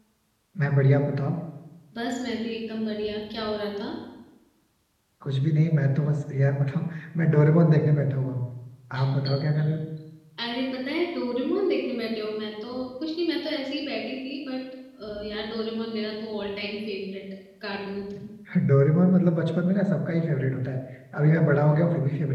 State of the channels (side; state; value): both; identical; correlation 1.00